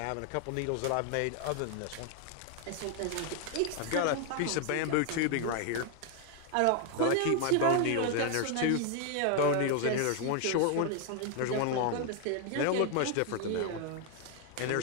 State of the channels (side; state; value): both; different; correlation 0.00